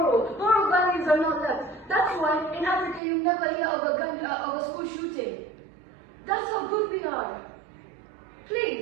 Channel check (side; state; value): left; drops out; at 3.0 s